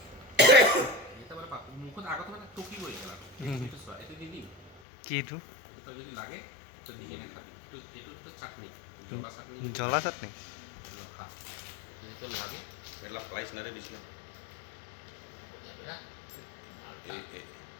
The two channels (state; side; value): drops out; right; at 4.8 s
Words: এটা মানে মুখত আগত মানে টকি গৈ গ'ল এইটো চোৱা এইটো দি দিম কি এইটো এইটো তই যদি লাগে তই দি কিনে খাবি এইটো চাটনি জ্বলা চাটনি জ্বলা চাটনি খা যদি তোৰ লাগে এলা প্ৰাইচ নাৰে দিছিলে